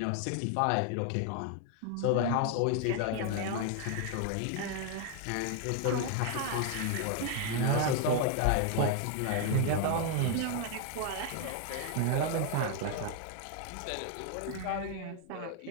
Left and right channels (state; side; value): different; both; correlation 0.00